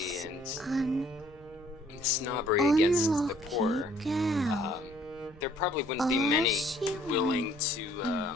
and snobbery against the poor, there probably wouldn't be many willing to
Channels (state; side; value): noise; right; rumble, 24 dB below the sound